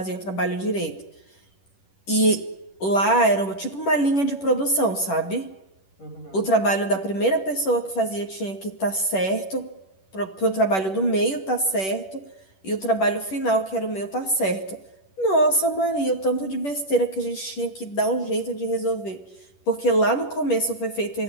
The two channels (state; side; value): late; right; 10 ms